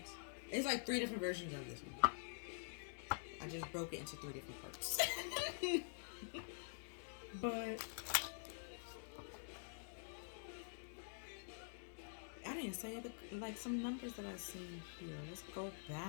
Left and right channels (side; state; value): right; silent; digital silence